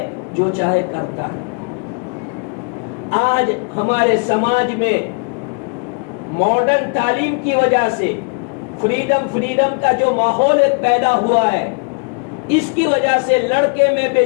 جو چاہے کرتا ہے. آج ہمارے سماج میں ماڈرن تعلیم کی وجہ سے فریڈم کا جو ماحول پیدا ہوا ہے، اس کی وجہ سے لڑکے میں بے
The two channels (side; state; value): right; quieter; 35.9 dB